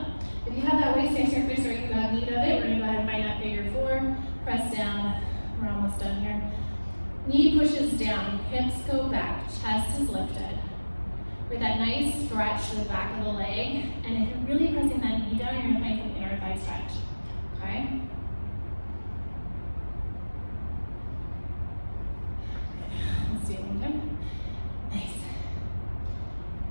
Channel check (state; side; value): inverted; both; correlation -1.00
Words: If you have that waist surface or you have need of it, we're going to go ahead and find that figure 4. Press down. We're almost done here. Knee pushes down, hips go back, chest is lifted. With that nice stretch to the back of the leg, and if you're really pressing that knee down, you're going to find some inner thigh stretch, okay? Let's do it one time. Nice.